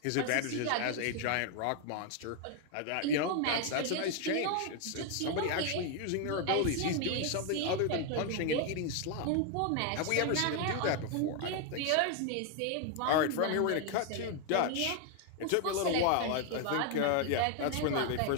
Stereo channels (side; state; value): both; different; correlation 0.01